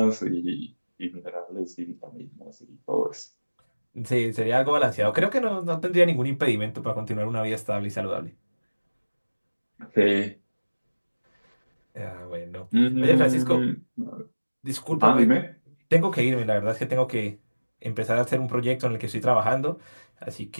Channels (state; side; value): inverted; both; correlation -1.00